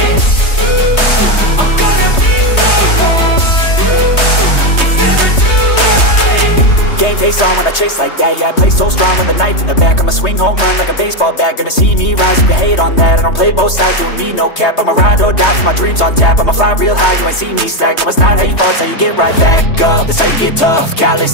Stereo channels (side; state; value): right; late; 3.2 ms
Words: Face on when I chase like that. Yeah, I play so strong with a knife in the back. I'ma swing home run like a baseball bat. Gonna see me rise, you can hate on that. I don't play both sides, doing me no cap. I'ma ride or die for my dreams on tap. I'ma fly real high, you ain't see me slack. No, it's not how you fall, it's how you get right back up. That's how you get tough.